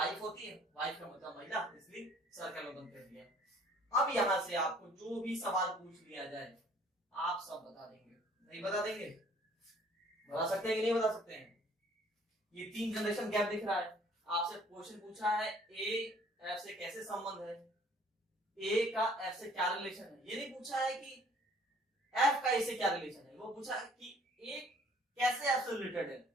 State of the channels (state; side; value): normal; both; correlation 0.57